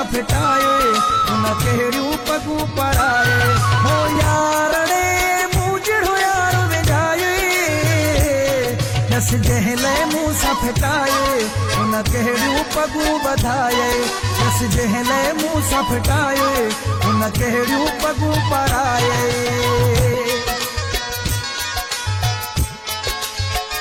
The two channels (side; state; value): both; identical; correlation 1.00